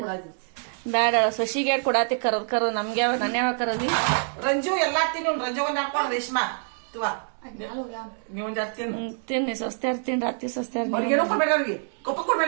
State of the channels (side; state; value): left; silent; digital silence